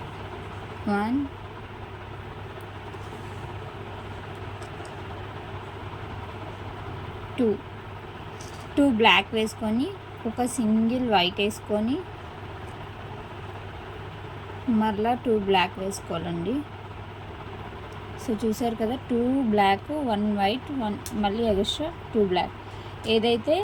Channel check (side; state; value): both; identical; correlation 1.00